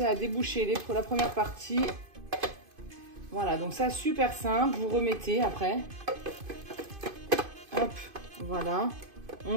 à déboucher la première partie. Voilà, donc ça, super simple. Vous remettez après. Hop, voilà.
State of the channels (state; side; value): late; left; 2.5 ms